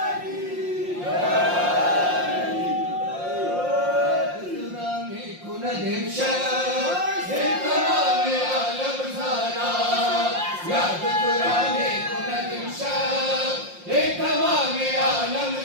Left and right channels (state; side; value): late; left; 5.6 ms